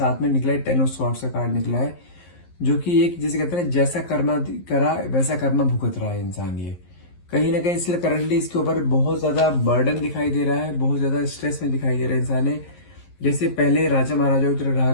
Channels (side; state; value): right; late; 11 ms